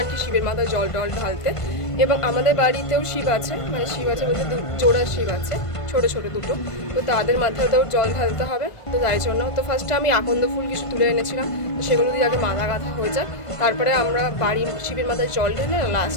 কি শিবের মাথায় জল টল ঢালতে, এবং আমাদের বাড়িতেও শিব আছে, মানে শিব আছে বলতে জোড়া শিব আছে, ছোটো ছোটো দুটো, তো তাদের মাথাতেও জল ঢালতে হবে। তো তাই জন্য তো ফার্স্টে আমি আকন্দ ফুল কিছু তুলে এনেছিলাম, তো সেগুলো দিয়ে আগে মালা গাঁথা হয়ে যায়, তারপরে আমরা বাড়ির শিবের মাথায় জল ঢেলে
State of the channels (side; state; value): right; late; 1.4 ms